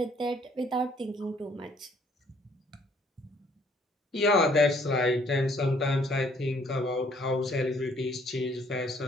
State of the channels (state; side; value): normal; both; correlation 0.62